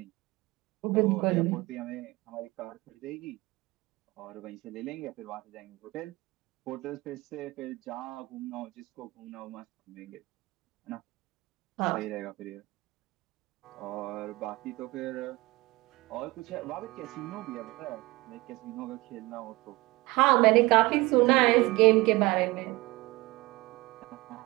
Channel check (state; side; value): quieter; left; 21.9 dB